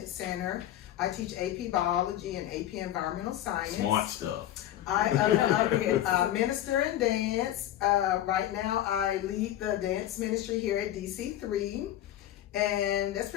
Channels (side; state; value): right; quieter; 12.6 dB